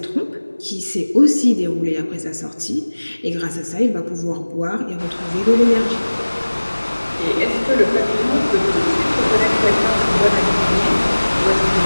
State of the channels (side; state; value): both; inverted; correlation -1.00